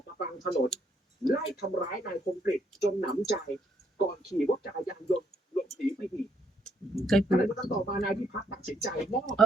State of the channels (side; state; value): both; normal; correlation 0.72